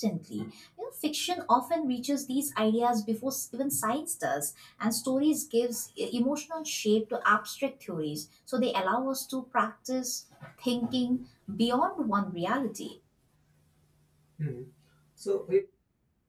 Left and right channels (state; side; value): identical; both; correlation 1.00